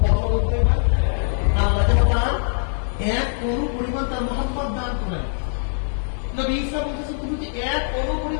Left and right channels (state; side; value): silent; right; digital silence